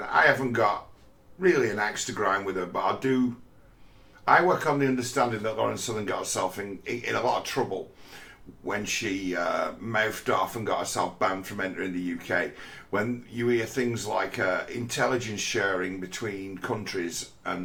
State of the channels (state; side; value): identical; both; correlation 1.00